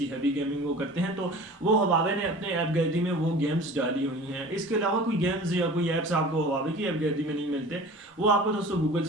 हैवी गेमिंग वो करते हैं, तो वो हवावे ने अपने ऐप गैलरी में वो गेम्स डाली हुई हैं। इसके अलावा कोई गेम्स या कोई ऐप्स आपको हवावे की ऐप गैलरी में नहीं मिलते, वो आपको दोस्तों गूगल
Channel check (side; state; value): both; normal; correlation 0.41